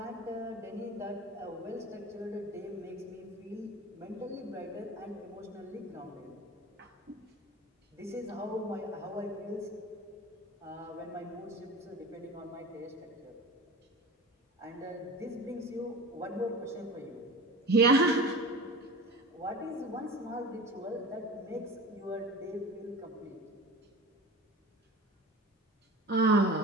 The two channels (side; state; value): both; normal; correlation 0.35